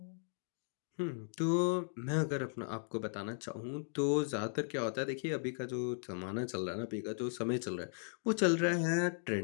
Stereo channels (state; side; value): silent; right; digital silence